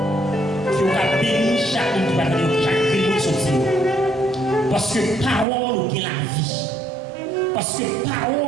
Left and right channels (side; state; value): left; drops out; at 5.5 s